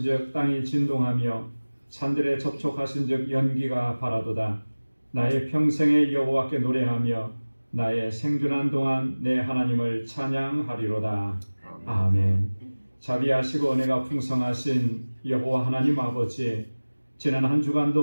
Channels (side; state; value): both; inverted; correlation -1.00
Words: 땅이 진동하며 산들에 접촉하신즉 연기가 바라도다. 나의 평생에 여호와께 노래하며 나의 생존한 동안 내 하나님을 찬양하리로다. 아멘. 자비하시고 은혜가 풍성하신 여호와 하나님 아버지, 지난 한